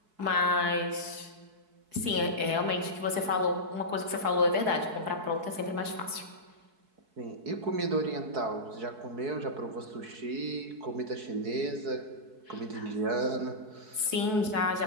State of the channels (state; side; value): late; left; 4.6 ms